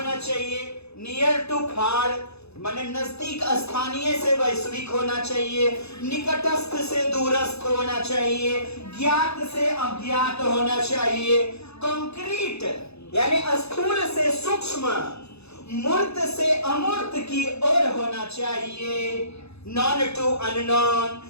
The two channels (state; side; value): late; right; 0.79 ms